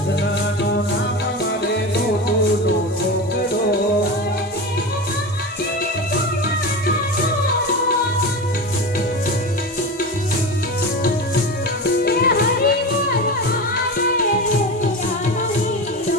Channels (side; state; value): both; normal; correlation 0.25